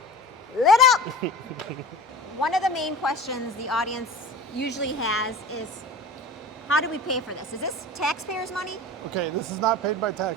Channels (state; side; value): normal; both; correlation 0.36